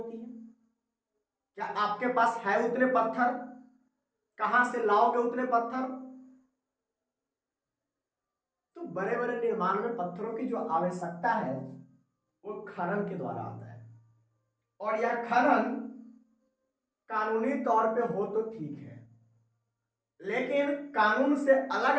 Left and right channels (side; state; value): both; identical; correlation 1.00